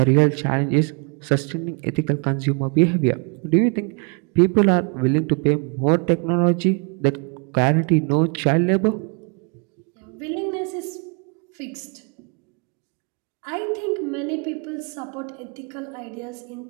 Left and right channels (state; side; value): quieter; left; 36.1 dB